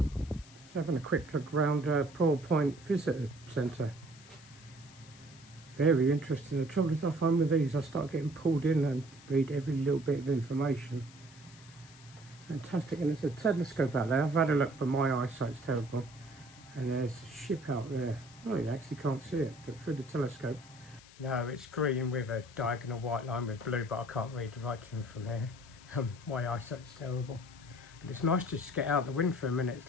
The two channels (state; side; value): noise; left; hiss, 22 dB below the sound